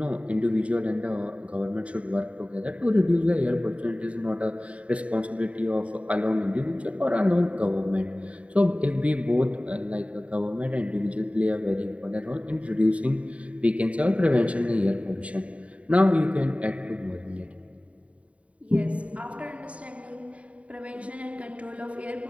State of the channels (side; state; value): left; late; 0.065 ms